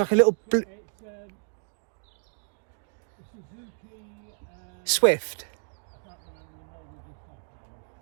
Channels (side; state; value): left; silent; digital silence